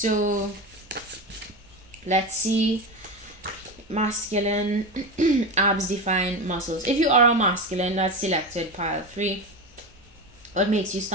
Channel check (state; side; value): normal; both; correlation 0.21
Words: let's see. Masculine, abs define muscles. If you are a masculine, that's selected pile 3. What makes you